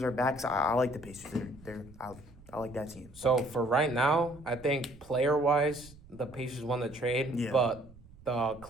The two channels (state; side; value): noise; right; rumble, 22 dB below the sound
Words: are back. So I like the Pacers. I like that team. So for right now, I think player-wise, the Pacers won the trade. Yeah. But the